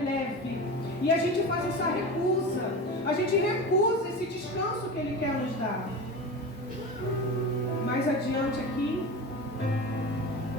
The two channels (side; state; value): both; normal; correlation 0.28